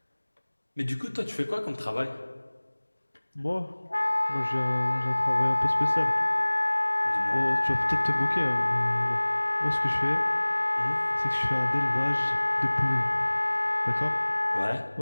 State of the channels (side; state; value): both; inverted; correlation -1.00